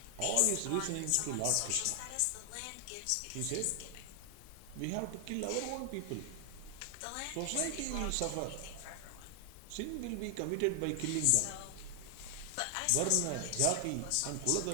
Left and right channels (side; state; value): both; different; correlation 0.00